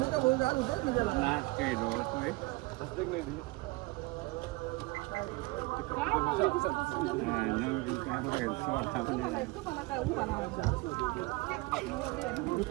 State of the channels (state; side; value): quieter; left; 23.2 dB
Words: नाच काही होतोय.